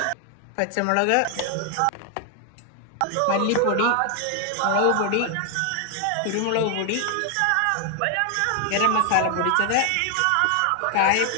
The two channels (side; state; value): both; different; correlation 0.00